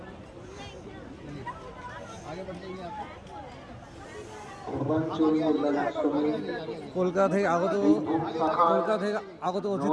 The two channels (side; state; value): both; identical; correlation 1.00